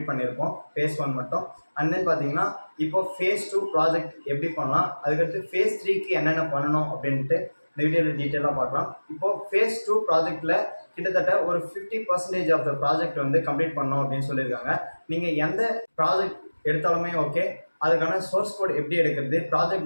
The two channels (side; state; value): both; inverted; correlation -1.00